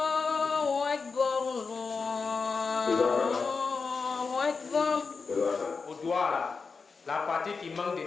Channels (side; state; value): right; quieter; 4.8 dB